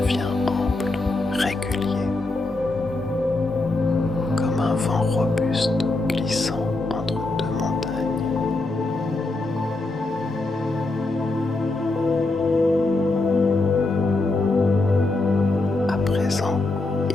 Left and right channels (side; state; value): right; quieter; 3.0 dB